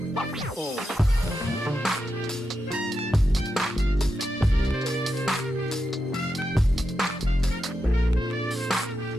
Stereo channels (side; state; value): both; normal; correlation 0.87